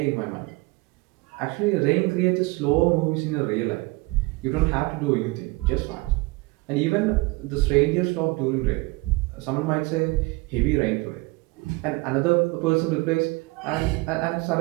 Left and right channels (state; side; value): quieter; left; 24.0 dB